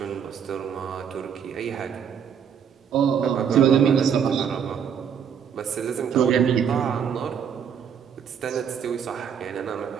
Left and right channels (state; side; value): quieter; left; 7.8 dB